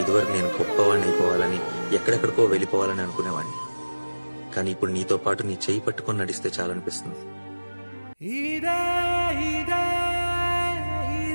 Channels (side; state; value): both; inverted; correlation -1.00